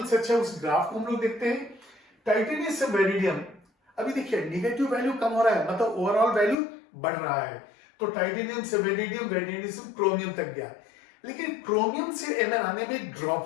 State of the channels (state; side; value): drops out; right; at 6.6 s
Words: से अच्छा है, उस ग्राफ को हम लोग देखते हैं। टाइटेनियम से वेरिडियम, अभी देखिए निगेटिव वैल्यू कम हो रहा है, मतलब ओवरऑल वैल्यू बढ़ रहा है। तो टाइटेनियम से वेरिडियम, वेरिडियम से क्रोमियम तक गया, लेकिन क्रोमियम से Mn आने में